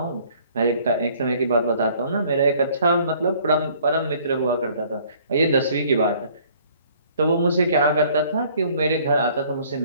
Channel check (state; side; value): inverted; both; correlation -0.58